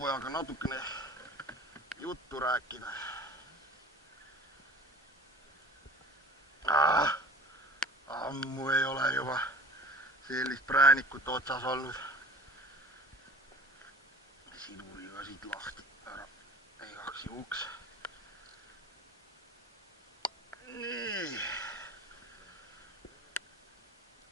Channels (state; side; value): normal; both; correlation 0.42